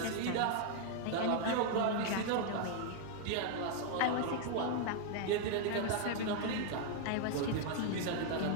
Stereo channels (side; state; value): both; different; correlation 0.00